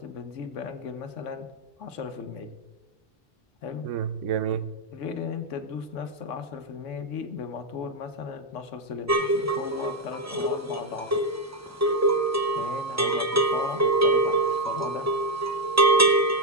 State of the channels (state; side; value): normal; both; correlation 0.03